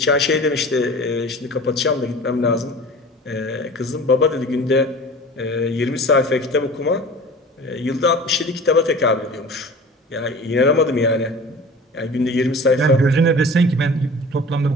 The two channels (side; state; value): both; normal; correlation 0.40